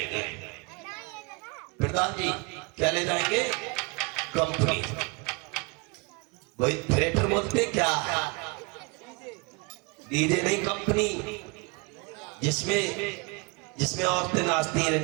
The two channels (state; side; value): quieter; left; 29.4 dB